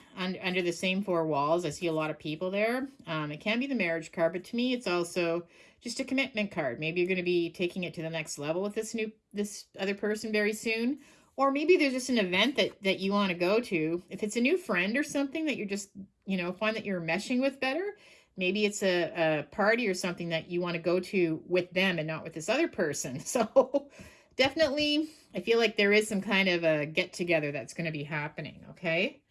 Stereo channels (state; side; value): identical; both; correlation 1.00